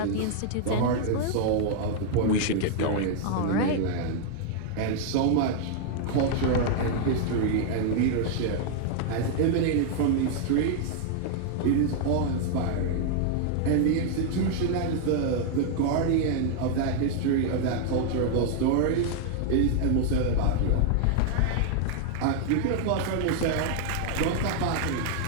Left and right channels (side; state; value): both; different; correlation 0.00